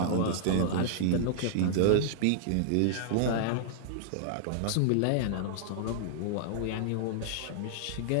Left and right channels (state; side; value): different; both; correlation -0.01